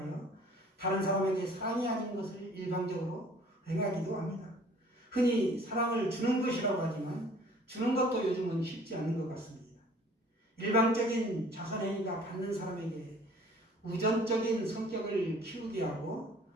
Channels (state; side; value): normal; both; correlation 0.53